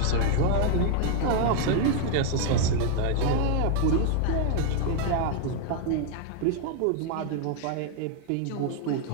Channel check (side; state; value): both; different; correlation 0.00